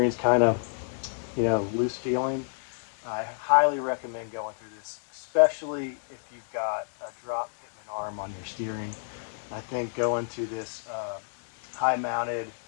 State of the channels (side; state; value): right; silent; digital silence